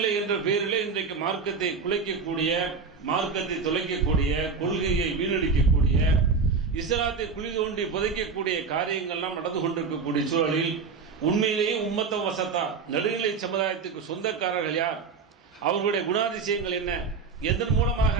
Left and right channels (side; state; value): left; quieter; 5.0 dB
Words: என்ற பெயரிலே இன்றைக்கு மார்க்கத்தை குலைக்கக்கூடிய, மார்க்கத்தை தொலைக்கக்கூடிய, கொள்கையை வீணடிக்கக்கூடிய, இஸ்லாத்தை குழி தோண்டி புதைக்கக்கூடிய காரியங்கள்லாம் நடந்து கொண்டிருக்கக்கூடிய சூழலில் உண்மையிலேயே உம்மத்தம் வசத்தா, நடுநிலை சமுதாயத்துக்கு சொந்தக்காரர்கள் யார், அவர்களுடைய குணாதிசயங்கள் என்ன, எதன் மூலமாக